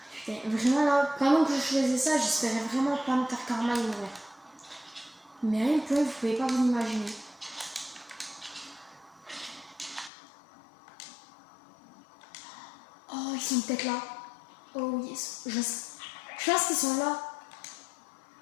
Putain, vraiment là, pendant que je faisais ça, j'espérais vraiment pas me faire karma et mourir. Mais rien que vous pouvez pas vous imaginer. Oh, ils sont peut-être là. Oh oui, je pense qu'ils sont là.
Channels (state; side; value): drops out; right; at 10.1 s